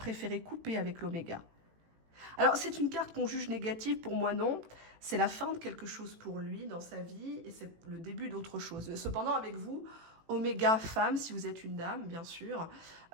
couper avec l'oméga. Alors, c'est une carte qu'on juge négative, pour moi non. C'est la fin de quelque chose pour lui dans sa vie et c'est le début d'autre chose. Cependant, avec vous, Oméga femme, si vous êtes une dame, bien sûr.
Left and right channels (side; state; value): left; late; 18 ms